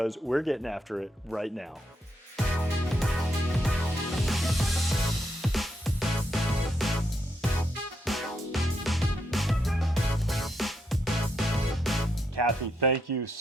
we're getting after it right now. Kathy, thank you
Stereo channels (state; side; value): normal; both; correlation 0.79